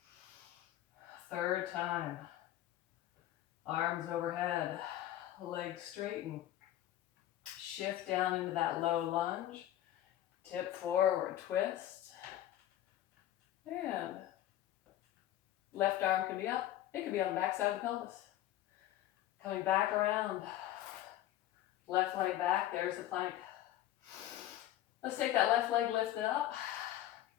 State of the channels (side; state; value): right; quieter; 13.2 dB